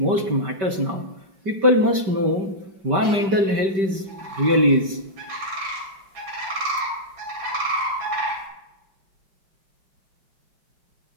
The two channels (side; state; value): left; late; 5.2 ms